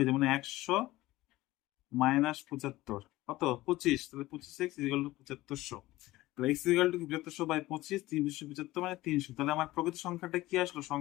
যায়, মানে 100 মাইনাস 75 কত 25, তাহলে 25x ইকুয়াল টু 7500। তাহলে x ইকুয়াল টু 7500 বাই 25, 375 মানে 300। তাহলে আমার প্রকৃত সংখ্যাটা কি আসলো?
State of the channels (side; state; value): right; quieter; 17.8 dB